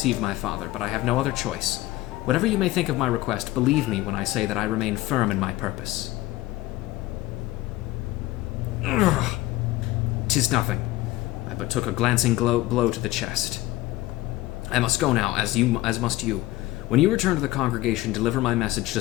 my father, but I have no other choice. Whatever you may think of my request, believe me when I say that I remain firm in my purpose. Ugh. 'Tis nothing. I but took a glancing blow to the chest. I must go now, as must you. When you return to the congregation, deliver my message to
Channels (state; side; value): quieter; right; 17.2 dB